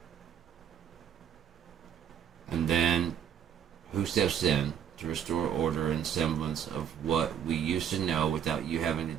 And then, who steps in to restore order and semblance of what we used to know without you having to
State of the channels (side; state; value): left; quieter; 8.9 dB